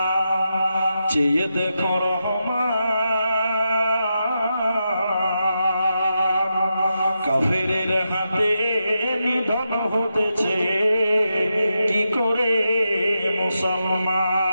চেয়ে দেখো রহমান। কাফেরের হাতে নিধন হতেছে কি করে মুসলমান।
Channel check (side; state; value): both; inverted; correlation -0.87